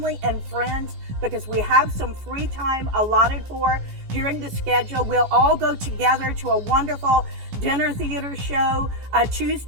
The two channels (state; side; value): late; left; 16 ms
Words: and friends, because we have some free time allotted for during the schedule. We'll all go together to a wonderful dinner theater show